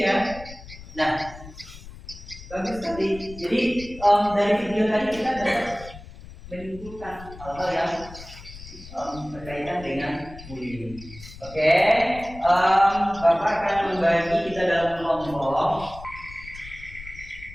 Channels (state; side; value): noise; left; rumble, 16 dB below the sound